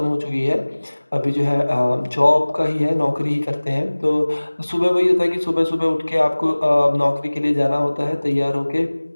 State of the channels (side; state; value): both; inverted; correlation -1.00